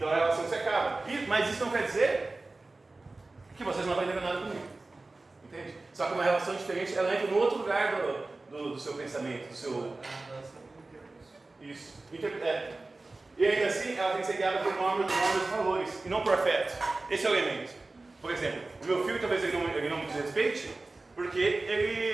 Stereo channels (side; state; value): left; quieter; 3.2 dB